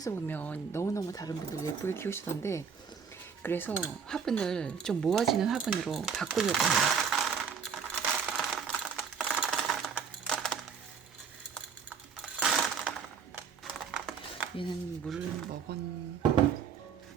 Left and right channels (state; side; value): quieter; left; 6.5 dB